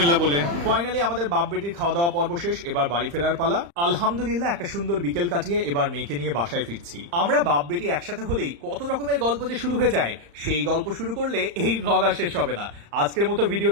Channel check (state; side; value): late; left; 35 ms